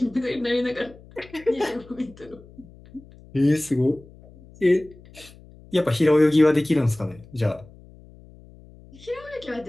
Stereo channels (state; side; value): noise; left; hum, 22 dB below the sound